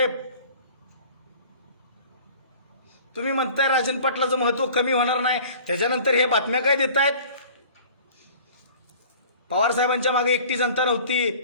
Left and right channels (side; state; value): both; inverted; correlation -0.46